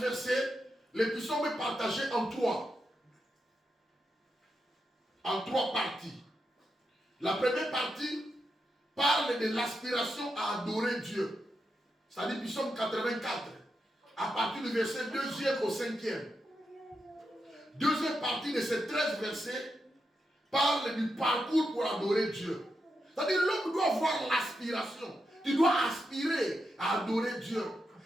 versets, le psaume est partagé en trois parties. La première partie parle de l'aspiration à adorer Dieu. C'est-à-dire psaume 84, à partir du verset 2e au 5e. Deuxième partie de ces 13 versets parle du parcours pour adorer Dieu. C'est-à-dire l'homme doit avoir l'aspiration. Tu dois aspirer à adorer Dieu.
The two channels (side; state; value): both; normal; correlation 0.86